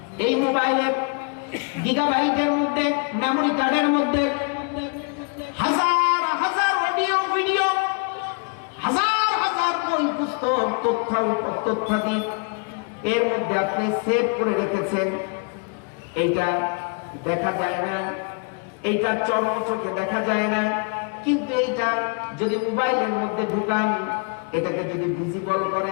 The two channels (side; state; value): right; quieter; 35.5 dB